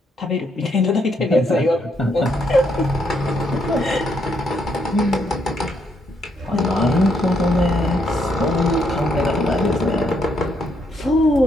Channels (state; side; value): normal; both; correlation 0.75